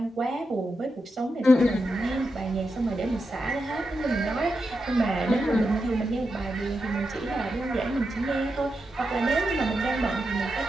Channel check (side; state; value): both; normal; correlation 0.87